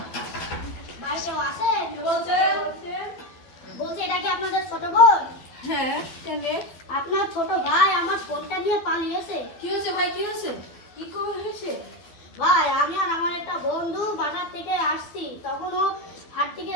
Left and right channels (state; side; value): late; right; 12 ms